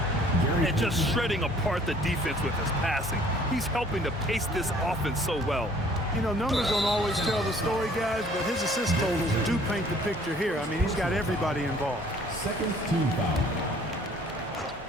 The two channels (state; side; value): normal; both; correlation 0.56